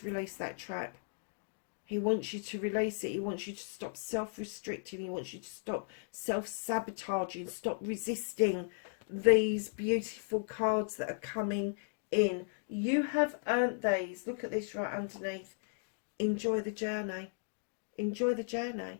release that trap. He wants you to release it. He wants you to stop self-restricting. He wants you to stop self-sabotaging. Stop resisting these beautiful cards that are coming in. You have earned these. Look at this right underneath. Enjoy the journey. Enjoy the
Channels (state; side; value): silent; right; digital silence